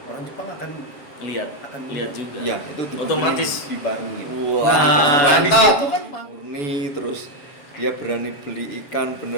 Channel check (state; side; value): late; right; 7.4 ms